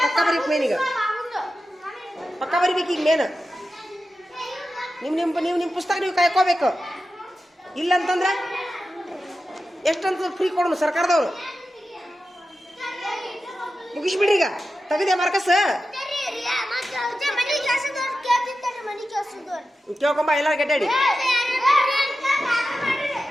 ಪಕ್ಕ ಬರೀಕ್ ಮೇನ್, ಈಗ ಪಕ್ಕ ಬರಿಬೇಕು. ಈಗ ಮೇನ್ ನಿಮ್ಮ ಪುಸ್ತಕ ನೀವು ಕಾಯ್ಕೋಬೇಕು. ಇಲ್ಲಂತಂದ್ರೆ ಎಷ್ಟಂತ ಫ್ರೀ ಕೊಡೋಣ ಸರ್ಕಾರದವ್ರು. ಮುಗಿಸ್ಬಿಡ್ರಿ ಈಗ. ತೆಗೆದೆ ಮಾರ್ಕಸ್ ಕೇಳ್ಕೊಂಬ. ಎಲ್ಲ ಗಡ್ಡಾಡಿ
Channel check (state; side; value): normal; both; correlation 0.92